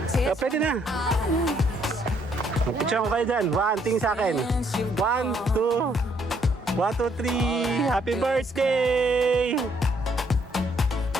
Oh, pwede na. Picture ko kayo dyan. 1, tingin sa akin. 1, 2. 1, 2, 3. Happy birthday!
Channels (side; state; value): both; normal; correlation 0.69